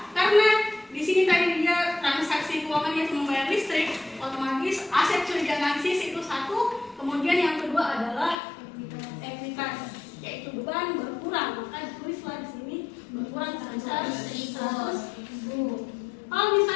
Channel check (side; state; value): right; drops out; at 8.3 s